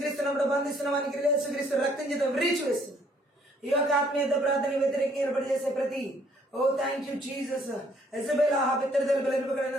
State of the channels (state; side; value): normal; both; correlation 0.64